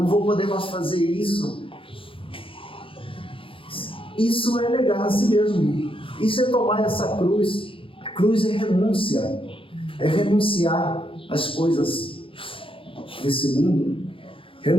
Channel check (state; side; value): late; right; 0.26 ms